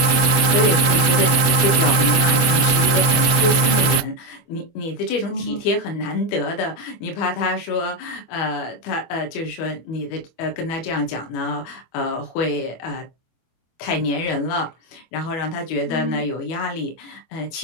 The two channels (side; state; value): right; late; 24 ms